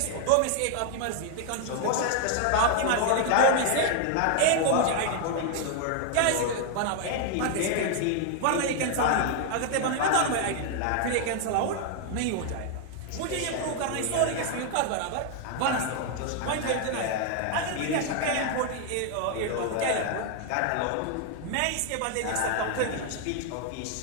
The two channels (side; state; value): both; different; correlation 0.00